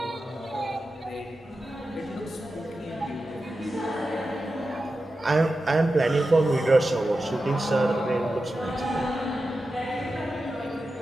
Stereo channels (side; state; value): both; normal; correlation 0.92